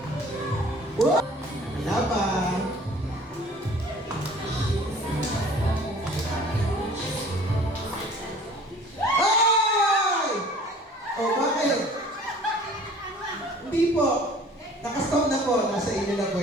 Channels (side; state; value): both; normal; correlation 0.49